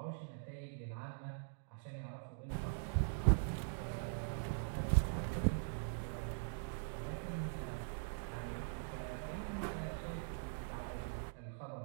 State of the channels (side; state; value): left; silent; digital silence